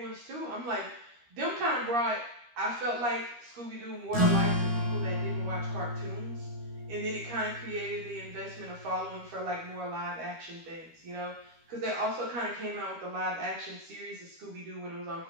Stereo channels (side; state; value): left; late; 13 ms